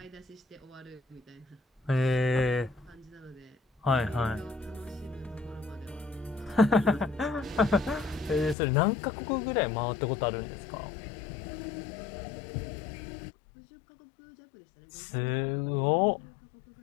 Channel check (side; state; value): right; drops out; at 8.6 s